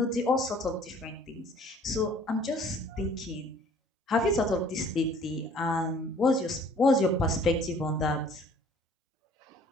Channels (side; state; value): both; normal; correlation 0.54